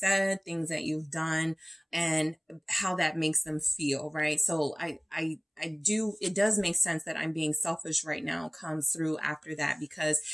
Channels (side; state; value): both; identical; correlation 1.00